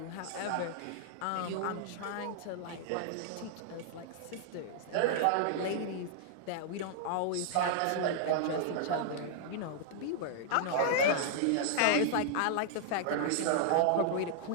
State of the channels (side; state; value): both; different; correlation -0.01